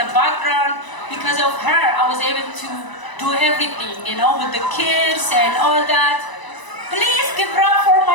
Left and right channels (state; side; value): late; right; 1.0 ms